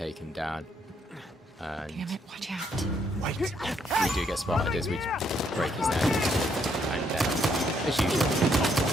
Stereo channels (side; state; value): both; normal; correlation 0.72